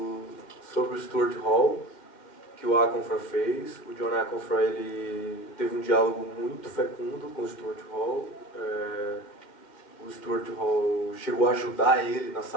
sobre o Stuart Hall, que o Aconfra fez. O John Aconfra, ele teve um diálogo muito fecundo com o Stuart Hall. O Stuart Hall chegou a ajudar ele na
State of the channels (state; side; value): late; right; 2.1 ms